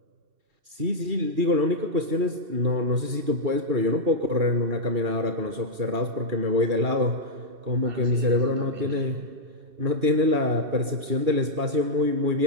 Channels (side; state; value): left; late; 2.4 ms